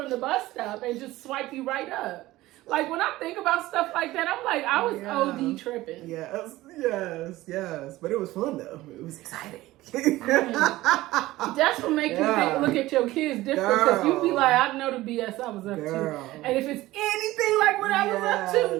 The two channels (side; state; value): left; quieter; 17.4 dB